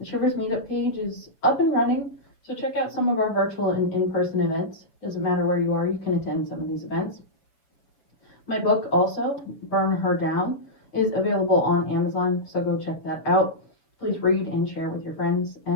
Shivers Meetup page is up and running, so check out some of our virtual and in-person events. Doesn't matter where you are, you can attend some of these events. My book also, Burn Her Down, is available on Amazon, so go check that out. Please read and share with your friends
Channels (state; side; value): late; right; 6.4 ms